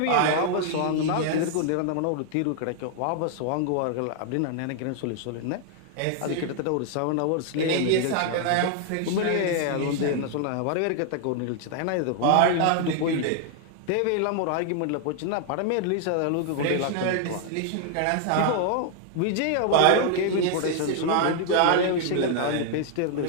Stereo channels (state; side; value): different; both; correlation 0.00